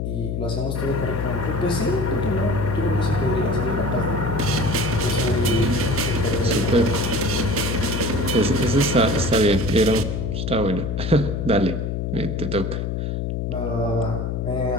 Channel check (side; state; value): left; noise; hum, 2 dB below the sound